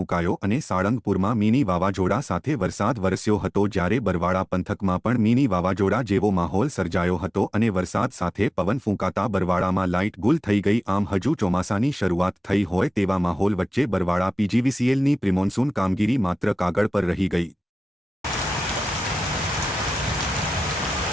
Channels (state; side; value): normal; both; correlation 0.95